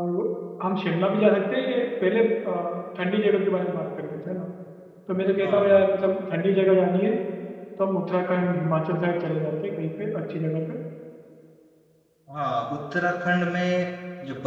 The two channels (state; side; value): identical; both; correlation 1.00